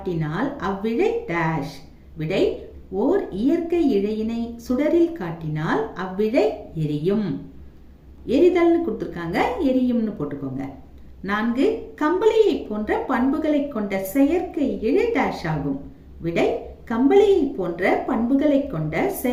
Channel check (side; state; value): both; identical; correlation 1.00